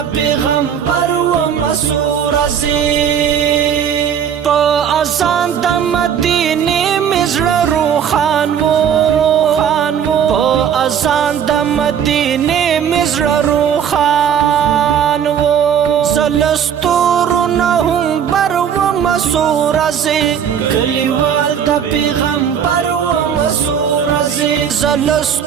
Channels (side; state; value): left; quieter; 8.3 dB